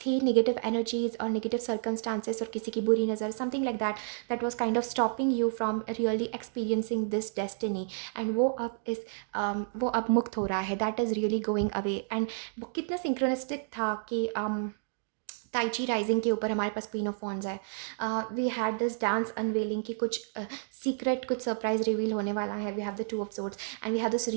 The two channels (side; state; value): left; silent; digital silence